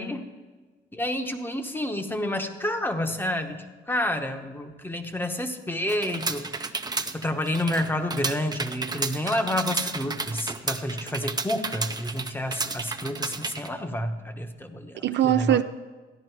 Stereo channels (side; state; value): both; normal; correlation 0.47